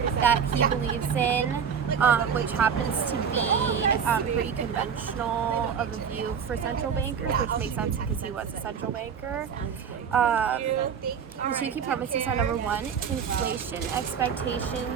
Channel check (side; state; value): left; quieter; 7.2 dB